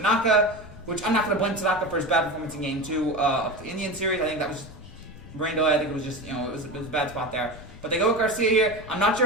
which I'm not going to blame Tanaka for his bad performance in Game 2 of the Indian series. I think that was just rain delay. I think it was just, it was a bad spot there. But they go with Garcia here. I'm not sure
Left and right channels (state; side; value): noise; left; rumble, 17 dB below the sound